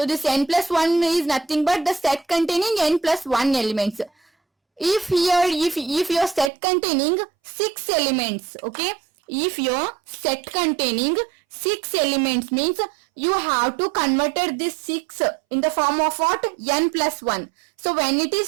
this n plus 1 is nothing but the set containing n plus 1 elements. If your set containing 6 elements, okay, if your set containing 6 elements means you have to convert this 6 in the form of what? N plus 1. So when it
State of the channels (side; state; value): left; drops out; at 6.5 s